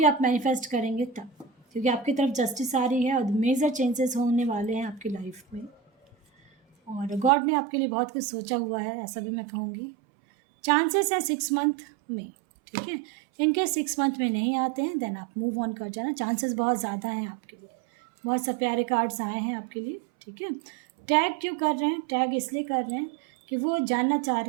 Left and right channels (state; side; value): drops out; left; at 7.3 s